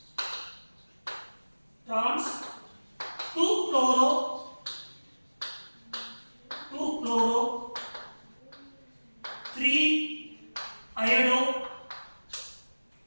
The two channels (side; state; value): both; inverted; correlation -1.00